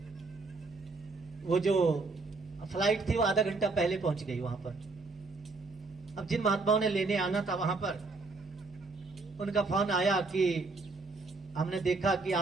वो जो फ्लाइट थी वो आधा घंटा पहले पहुंच गई वहां पर। अब जिन महात्माओं ने लेने आना था वहां पर, उनका फोन आया कि हमने देखा कि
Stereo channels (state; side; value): quieter; left; 3.7 dB